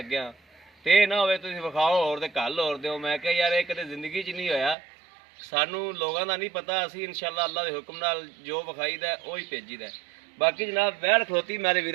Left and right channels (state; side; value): drops out; left; at 4.8 s